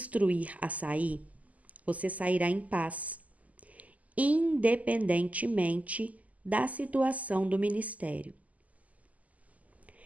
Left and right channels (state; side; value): late; left; 0.074 ms